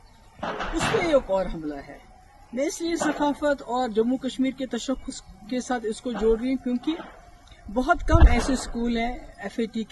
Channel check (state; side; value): identical; both; correlation 1.00